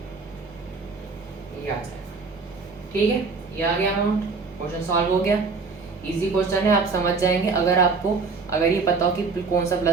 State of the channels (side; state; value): left; quieter; 4.5 dB